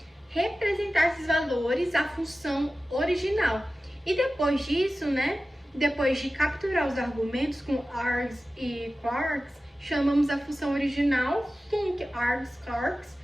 representar esses valores à função original. E depois disso, né, depois de capturar os argumentos com args e quarks, chamamos a função original func args quarks.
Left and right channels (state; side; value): normal; both; correlation 0.95